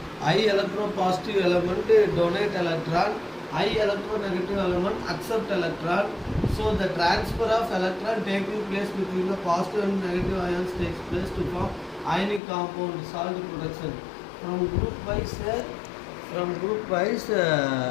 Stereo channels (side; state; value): right; drops out; at 12.4 s